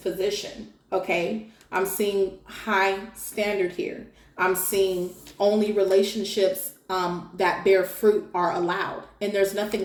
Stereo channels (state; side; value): identical; both; correlation 1.00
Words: Okay? I'm seeing high standard here. I'm seeing only relationships that bear fruit are allowed. And there's